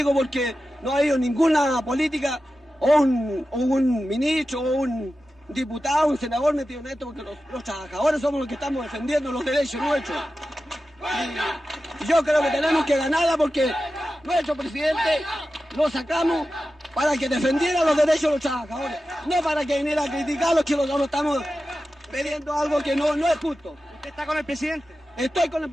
porque no ha habido ninguna política o un ministro o un diputado, un senador metido en esto, porque los trabajadores somos los que estamos defendiendo los derechos nuestros. Y yo creo que tenemos que ganarla porque nuestro presidente lo sacamos para que defendiera los derechos de los trabajadores, no para que viniera a criticarlos, que nosotros estamos pidiendo algo que no es justo. ¿Usted está con el presidente? Estoy con el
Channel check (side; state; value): both; normal; correlation 0.93